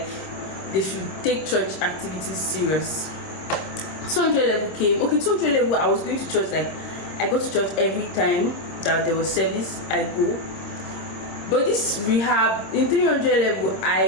they should take church activities serious. 200 level came. Okay, 200 level, I was going to church, like I go to church every time that there was service, I go. But this rehab in 300 level,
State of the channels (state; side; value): late; right; 26 ms